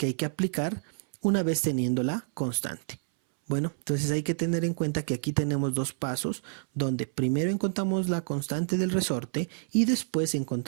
hay que aplicar una vez teniendo la constante. Bueno, entonces hay que tener en cuenta que aquí tenemos dos pasos donde primero encontramos la constante del resorte y después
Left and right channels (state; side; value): silent; left; 59 dB below the other